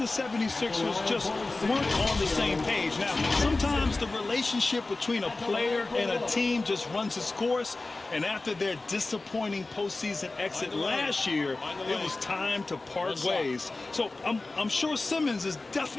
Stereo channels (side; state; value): right; quieter; 3.3 dB